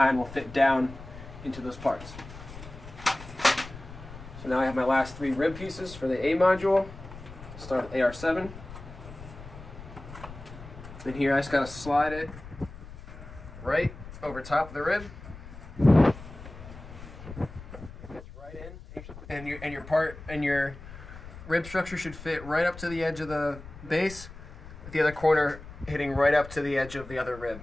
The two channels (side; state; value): left; noise; rumble, 14 dB below the sound